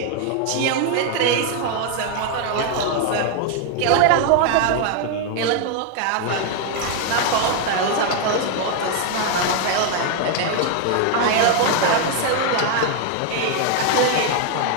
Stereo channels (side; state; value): both; different; correlation 0.01